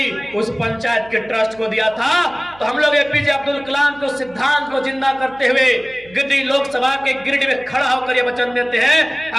उस पंचायत के ट्रस्ट को दिया था। तो हम लोग एपीजे अब्दुल कलाम को सिद्धांत को जिंदा करते हुए गिरिडीह लोकसभा के गिरिडीह में खड़ा होकर ये वचन देते हैं,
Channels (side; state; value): right; noise; hum, 24 dB below the sound